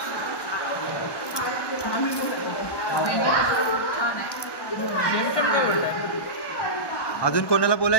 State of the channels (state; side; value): late; right; 1.1 ms